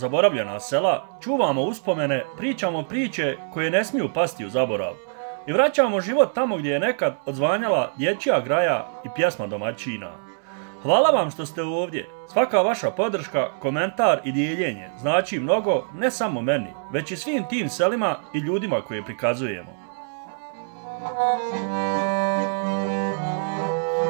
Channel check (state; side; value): silent; left; digital silence